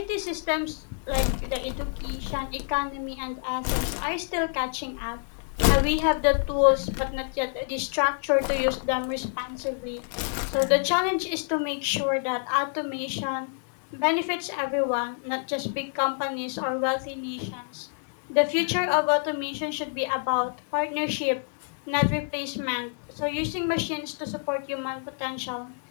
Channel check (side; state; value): right; silent; 59 dB below the other